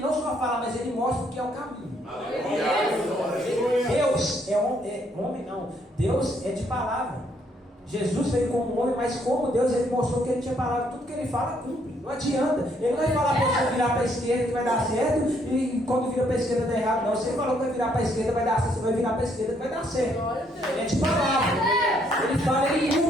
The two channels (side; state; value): both; normal; correlation 0.70